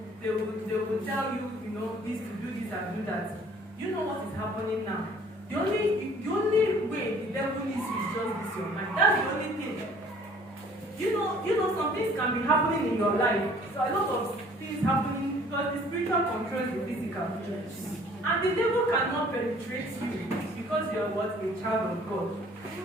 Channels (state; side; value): normal; both; correlation 0.55